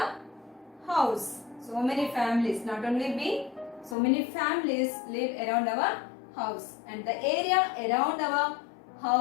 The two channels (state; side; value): drops out; right; at 4.0 s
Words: house. So many families, not only we, so many families live around our house, and the area around our